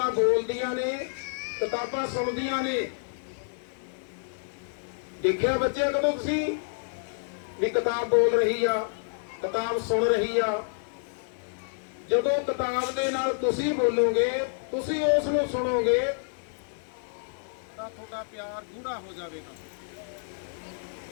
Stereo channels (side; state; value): right; silent; 59 dB below the other